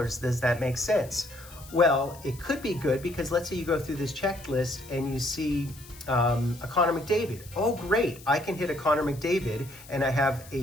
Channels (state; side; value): noise; left; hiss, 20 dB below the sound